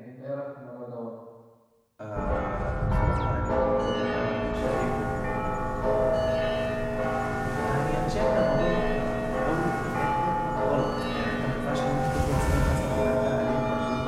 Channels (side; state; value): both; identical; correlation 1.00